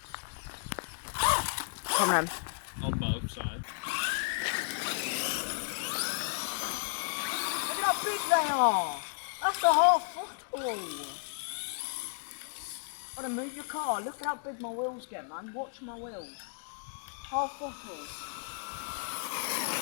Come on. On both sides. Look at how big they are! That's a half football! Gotta move your car. Look at how big my wheels get, man. Watch my wheels. Half football.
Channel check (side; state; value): right; silent; digital silence